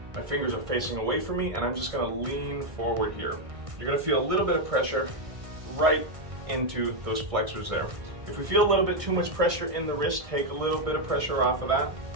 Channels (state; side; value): late; left; 1.6 ms